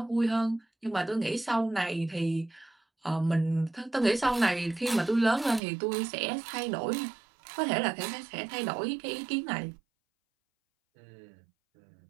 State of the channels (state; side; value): drops out; left; at 5.6 s